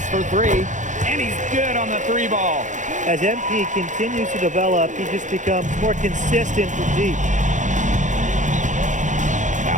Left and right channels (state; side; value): late; left; 0.36 ms